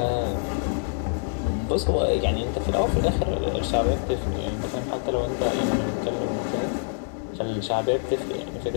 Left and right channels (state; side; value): silent; right; digital silence